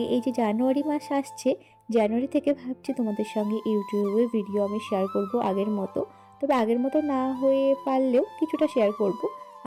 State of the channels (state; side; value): identical; both; correlation 1.00